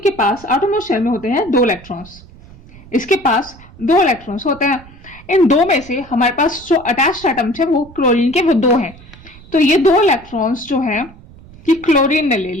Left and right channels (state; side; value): noise; right; rumble, 21 dB below the sound